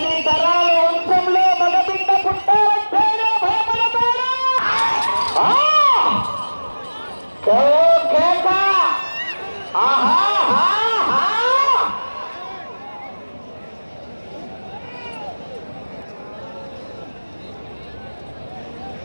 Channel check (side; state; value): both; inverted; correlation -1.00